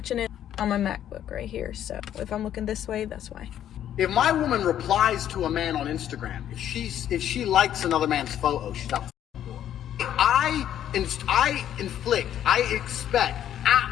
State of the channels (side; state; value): right; quieter; 10.8 dB